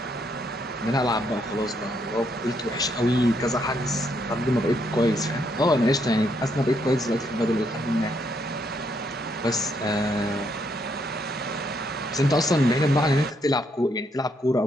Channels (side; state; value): both; normal; correlation 0.75